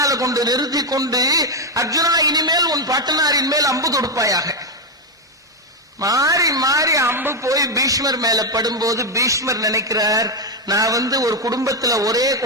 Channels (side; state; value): both; normal; correlation 0.06